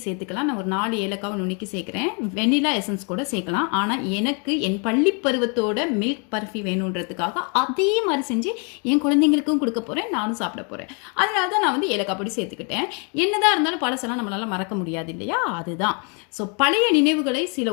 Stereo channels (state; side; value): quieter; right; 36.7 dB